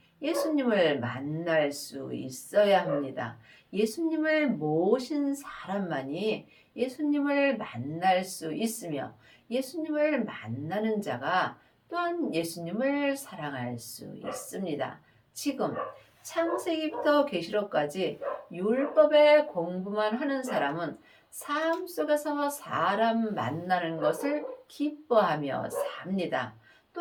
예수님을 만날 수 있어야 합니다. 예수님을 모신 사람만이 예수님을 만날 수 있으며 예수님을 만나는 자가 또한 예수님을 사랑할 수 있습니다. 지금 창세기부터 계시록까지 율법의 공부만 하는 사람은 삶 속에서 사람 만나는 것을 기뻐하며 삽니다.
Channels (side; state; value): both; identical; correlation 1.00